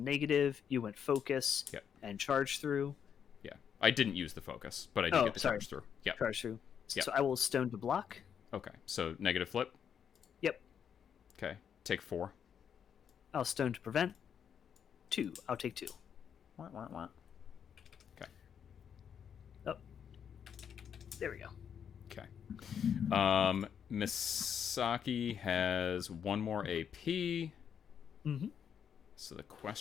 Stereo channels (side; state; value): right; quieter; 8.0 dB